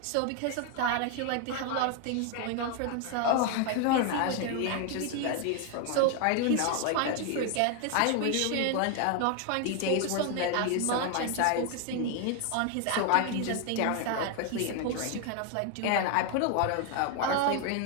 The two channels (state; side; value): different; both; correlation 0.01